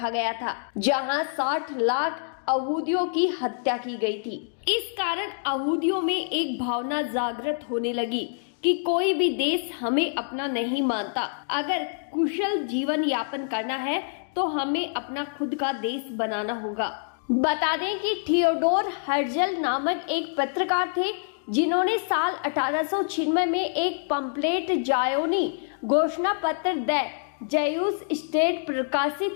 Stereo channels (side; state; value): right; silent; digital silence